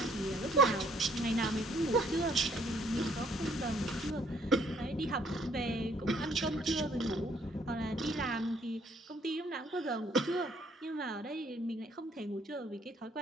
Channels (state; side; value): normal; both; correlation 0.65